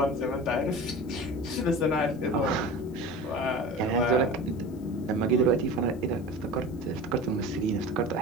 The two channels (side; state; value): left; noise; hiss, 28 dB below the sound